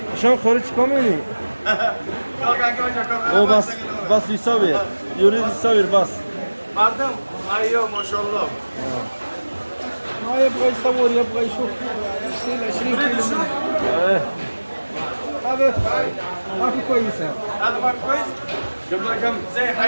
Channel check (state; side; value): inverted; both; correlation -1.00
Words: شلون خارج كاملي او بس يصور يريد يصور بس مردم ايوه ما شاء الله ما يبغى يصور يبغى يشوف يشيل 20 كيلو منه. ايه هذا ما في كويسه. هذا ما كويس جاب لك كم زي